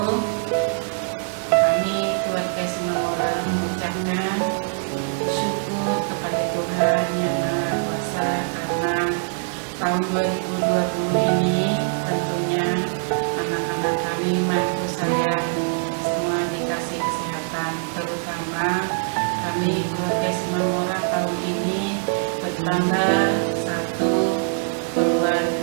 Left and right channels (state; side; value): silent; left; digital silence